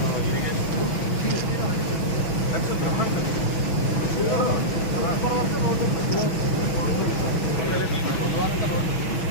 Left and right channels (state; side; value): late; right; 6.1 ms